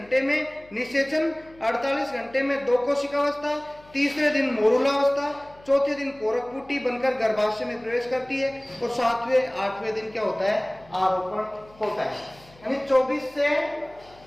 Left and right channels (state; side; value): noise; left; hum, 26 dB below the sound